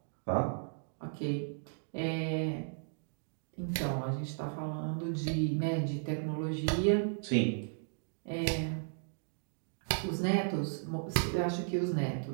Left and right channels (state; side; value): silent; left; digital silence